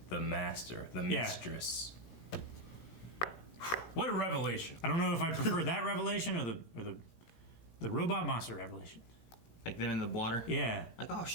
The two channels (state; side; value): late; right; 17 ms